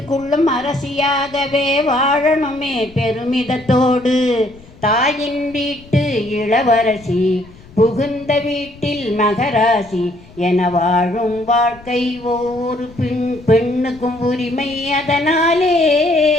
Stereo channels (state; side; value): noise; left; rumble, 22 dB below the sound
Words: அரசியாகவே வாழணுமே பெருமிதத்தோடு. தாயின் வீட்டு இளவரசி, புகுந்த வீட்டில் மகராசி என வாழும் வாழ்க்கை ஒவ்வொரு பெண்ணுக்கும் உரிமை. அதனாலே